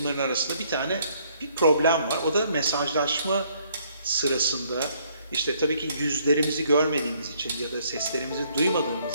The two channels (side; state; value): both; inverted; correlation -0.66